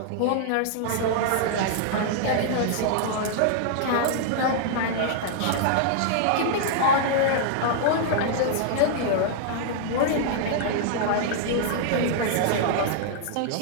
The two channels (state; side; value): different; both; correlation -0.01